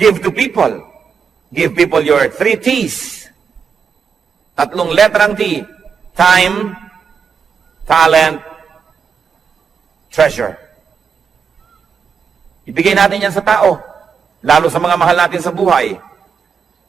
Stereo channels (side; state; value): left; quieter; 6.3 dB